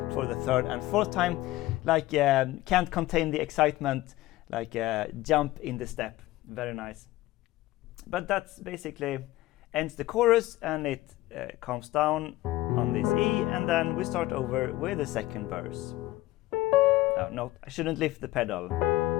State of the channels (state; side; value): quieter; right; 17.1 dB